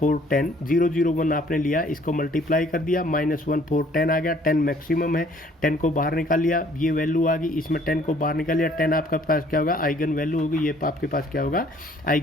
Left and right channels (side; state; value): both; normal; correlation 0.59